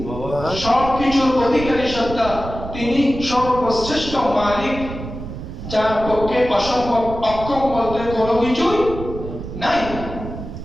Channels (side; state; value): right; noise; rumble, 9 dB below the sound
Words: সবকিছুর অধিকারী সত্তা, তিনি সর্বশ্রেষ্ঠ মালিক, যার পক্ষে অসম্ভব অক্ষম বলতে কোনো কিছুই নাই।